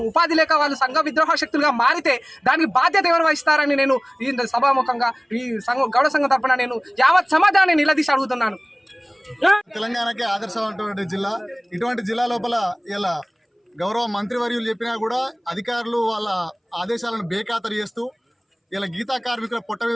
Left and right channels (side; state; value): both; identical; correlation 1.00